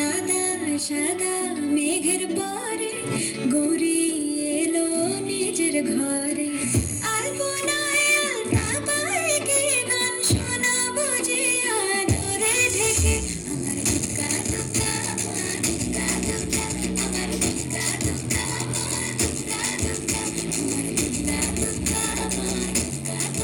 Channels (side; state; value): both; identical; correlation 1.00